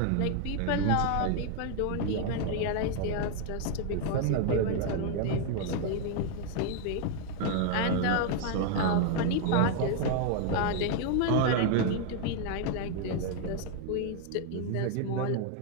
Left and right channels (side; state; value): both; different; correlation 0.01